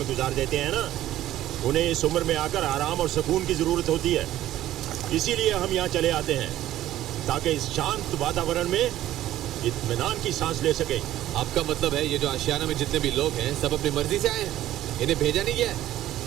गुजार देते हैं ना, उन्हें इस उम्र में आकर आराम और सुकून की जरूरत होती है। इसीलिए हम यहाँ चले आते हैं ताकि इस शांत वातावरण में इत्मीनान की सांस ले सके। आपका मतलब है ये जो आशियाना में जितने भी लोग हैं सब अपनी मर्जी से आए हैं, इन्हें भेजा नहीं गया है?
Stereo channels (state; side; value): quieter; left; 13.6 dB